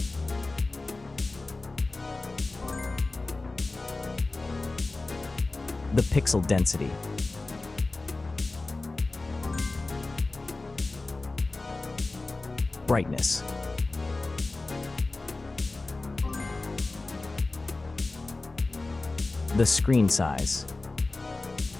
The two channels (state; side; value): quieter; right; 3.3 dB